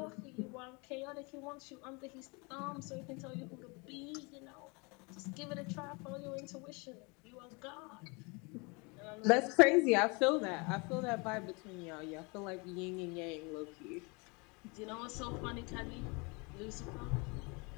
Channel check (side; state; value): right; quieter; 29.8 dB